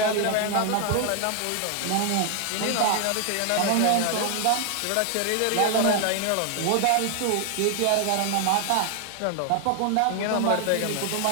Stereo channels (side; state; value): both; different; correlation 0.00